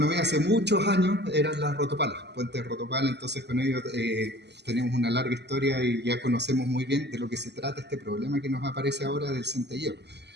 hace muchos años eran las rotopalas, puentes rotopala. Entonces con ellos tenemos una larga historia y ya conocemos muy bien de lo que se trata este problema que nos aparece ahora del centelleo.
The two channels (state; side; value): late; left; 0.50 ms